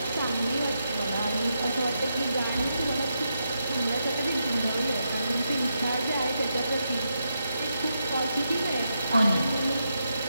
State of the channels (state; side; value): inverted; both; correlation -0.83